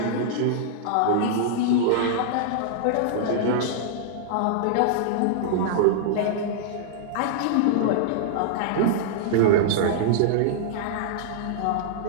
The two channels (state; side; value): different; both; correlation -0.02